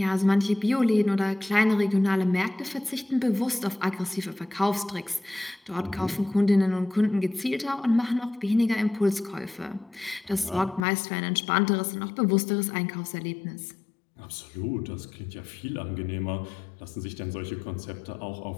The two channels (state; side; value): drops out; right; at 10.9 s